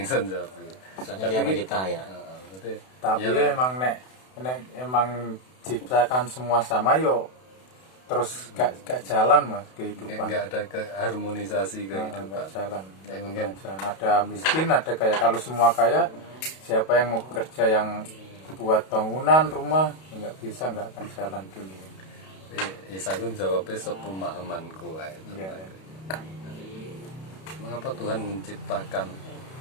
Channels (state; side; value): late; right; 32 ms